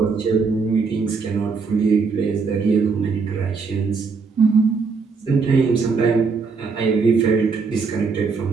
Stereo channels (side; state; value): left; quieter; 4.9 dB